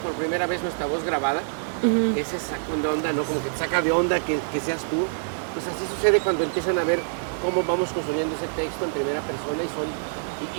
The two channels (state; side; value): silent; left; digital silence